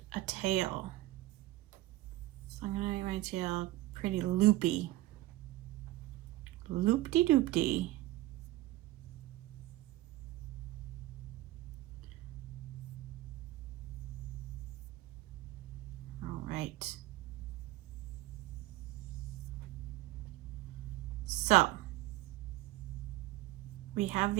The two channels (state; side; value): quieter; left; 16.9 dB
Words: a tail. So I'm gonna make my tail pretty loopy. Loop-de-doop-de. All right. So we have